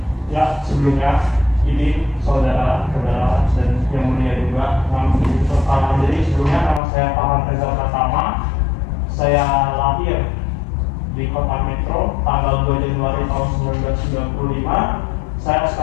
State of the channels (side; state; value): right; drops out; at 6.8 s